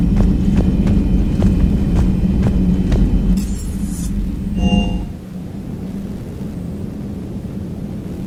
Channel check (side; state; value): both; identical; correlation 1.00